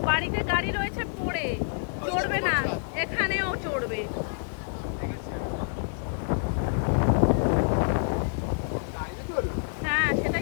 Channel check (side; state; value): right; silent; 60 dB below the other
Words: বাড়িতে গাড়ি রয়েছে পড়ে, চড়বে না, এখানেও চড়বে। হ্যাঁ